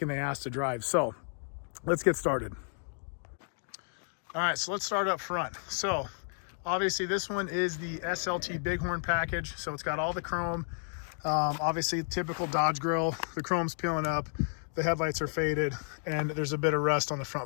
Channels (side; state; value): right; silent; 56 dB below the other